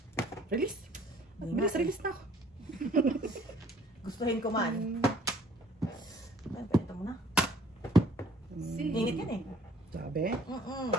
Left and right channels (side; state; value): both; normal; correlation 0.57